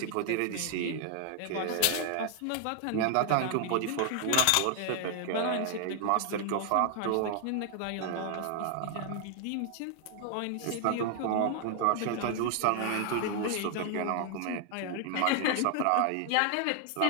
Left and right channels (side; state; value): both; different; correlation 0.00